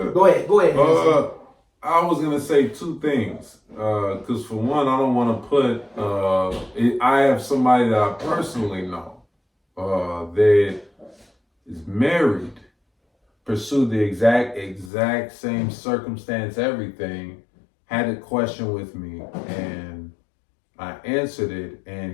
Go ahead. I was gonna say two things. Because for one, I don't want to put. I have somebody that I personally know that is married, pursued the exact same circumstance, everything, had a question with me, and I answered it.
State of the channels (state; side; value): drops out; right; at 14.9 s